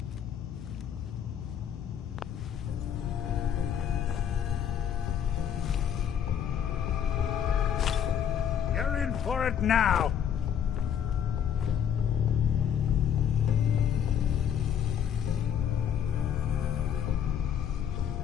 You're in for it now.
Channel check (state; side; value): quieter; right; 8.8 dB